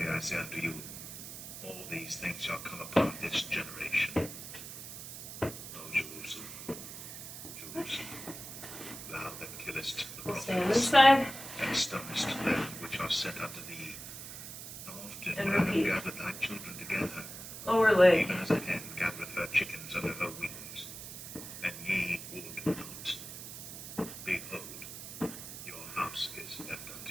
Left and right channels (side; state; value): right; noise; hiss, 10 dB below the sound